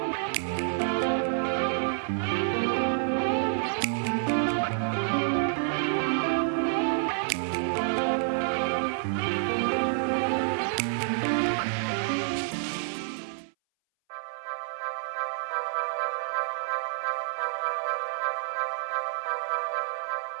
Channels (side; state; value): left; silent; 59 dB below the other